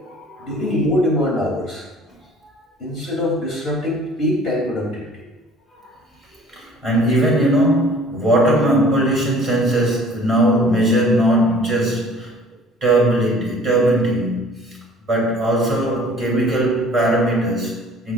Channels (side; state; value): both; normal; correlation 0.51